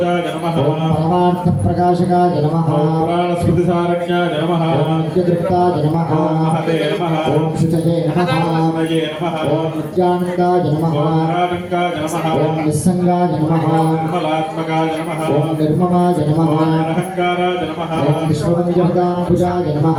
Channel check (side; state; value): both; identical; correlation 1.00